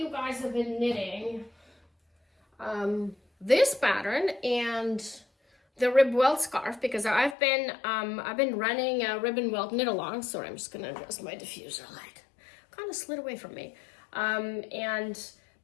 guys have been knitting this pattern and the rib welt scarf because I've been running a ribbon welt knit along. Sorry, I'm just gonna adjust my diffuser light. Kind of slid away from me, and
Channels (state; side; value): drops out; right; at 7.4 s